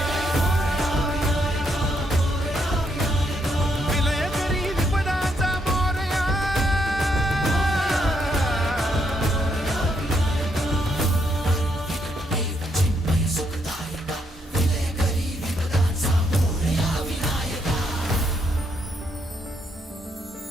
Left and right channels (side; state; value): both; normal; correlation 0.76